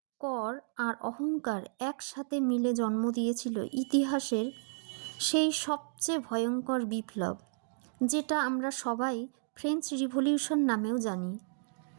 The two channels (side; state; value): left; silent; digital silence